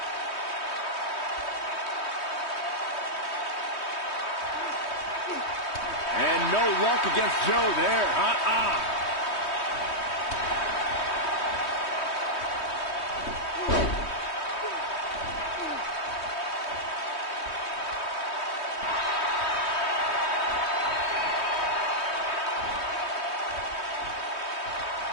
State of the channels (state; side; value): late; right; 3.2 ms